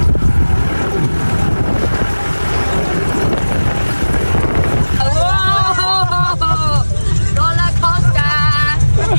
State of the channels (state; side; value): inverted; both; correlation -1.00